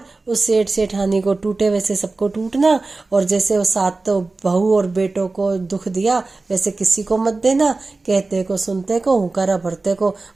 उस सेठ सेठानी को टूटे वैसे सबको टूटना, और जैसे वो 7 बहू और बेटों को दुख दिया वैसे किसी को मत देना, कहते को सुनते को हुकारा भरते को।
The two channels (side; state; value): left; quieter; 3.5 dB